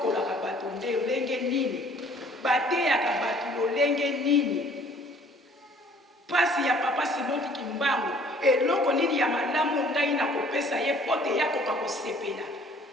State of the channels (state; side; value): normal; both; correlation 0.56